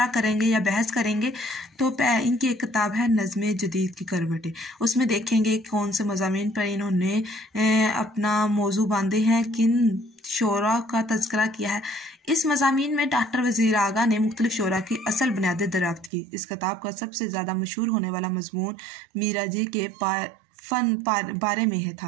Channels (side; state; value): left; drops out; at 16.1 s